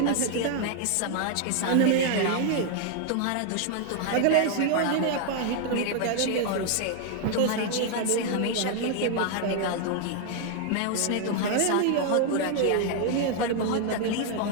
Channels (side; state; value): both; different; correlation 0.00